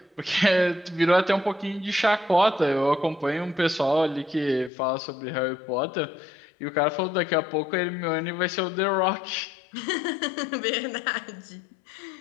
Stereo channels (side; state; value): right; drops out; at 4.7 s